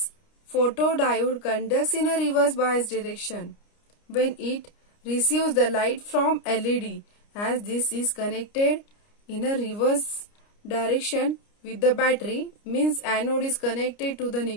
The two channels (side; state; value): right; late; 29 ms